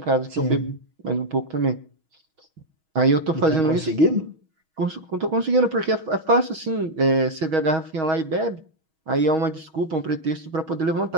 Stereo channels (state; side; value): late; left; 6.3 ms